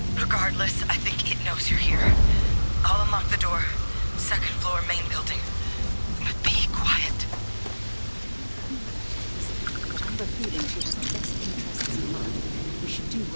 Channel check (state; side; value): inverted; both; correlation -1.00